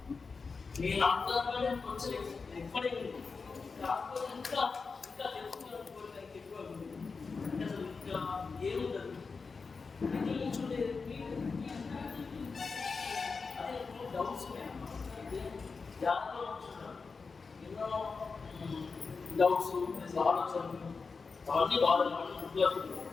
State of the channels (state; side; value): quieter; right; 4.7 dB